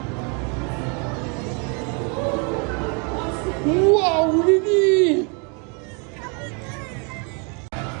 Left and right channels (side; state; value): left; quieter; 34.7 dB